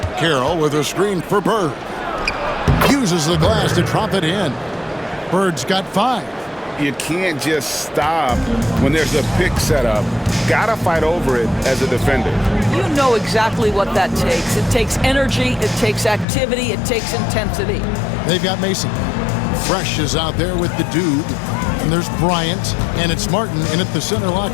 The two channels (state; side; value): drops out; right; at 16.2 s